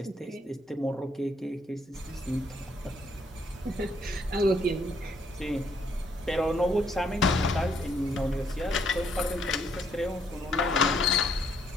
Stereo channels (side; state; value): both; normal; correlation 0.70